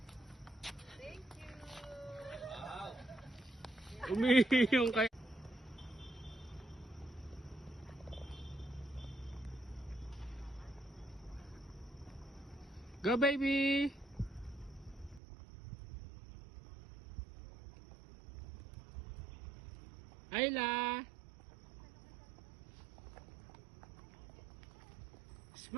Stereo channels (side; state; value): left; drops out; at 15.2 s